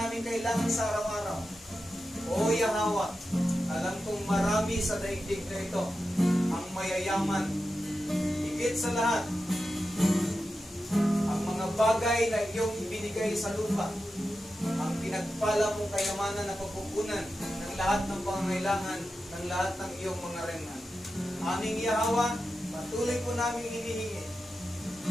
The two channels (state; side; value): normal; both; correlation 0.91